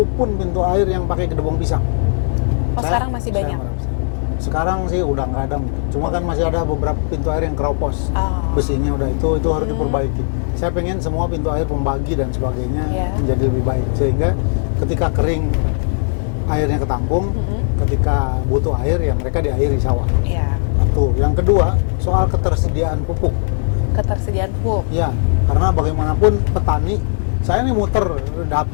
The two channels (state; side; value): silent; right; digital silence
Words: pintu air yang pakai Gedebong Pisang. Sekarang masih banyak? Sekarang sih udah nggak ada, cuma kan masih ada beberapa pintu air yang keropos. Besinya udah itu harus diperbaiki. Saya pengen semua pintu air pembagi dan sebagainya menjadi lebih baik, sehingga ketika kering airnya ketampung, ketika butuh air ya mereka diairi sawah. Satu. Yang kedua, soal ketersediaan pupuk. Ya, karena bagaimanapun petani, saya nih muter